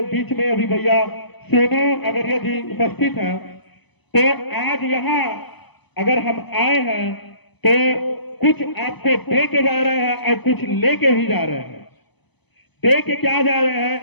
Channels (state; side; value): late; right; 0.99 ms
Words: बीच में अभी भैया सोनू अगरिया जी उपस्थित हैं। तो आज यहाँ अगर हम आए हैं तो कुछ आपको दे के जा रहे हैं और कुछ लेके भी जा रहे हैं। दे के क्या जा रहे